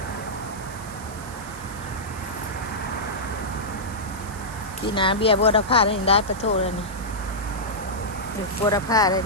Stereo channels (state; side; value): noise; right; hiss, 17 dB below the sound